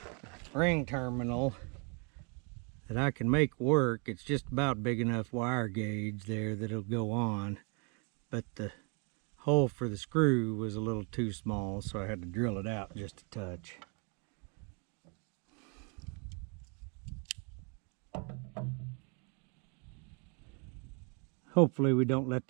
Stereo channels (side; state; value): left; quieter; 35.3 dB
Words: ring terminal that I can make work. It's just about big enough wire gauge there that it'll go on, but the hole for the screw was a little too small, so I had to drill it out just a touch. Hopefully we don't let